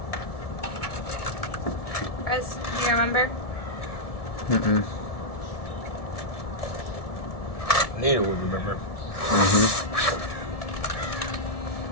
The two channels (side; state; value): right; late; 1.7 ms